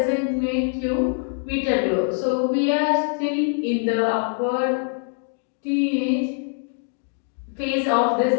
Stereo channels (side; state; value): right; silent; 56 dB below the other